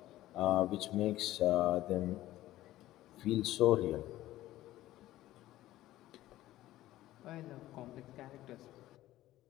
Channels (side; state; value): right; quieter; 15.2 dB